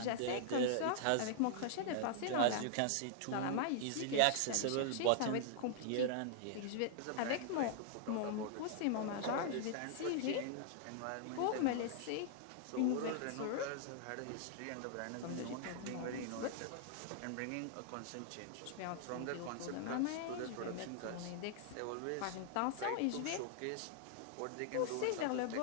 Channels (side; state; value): both; different; correlation -0.01